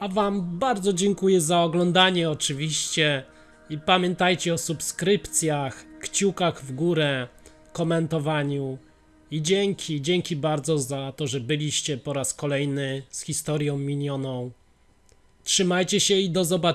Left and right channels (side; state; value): both; identical; correlation 1.00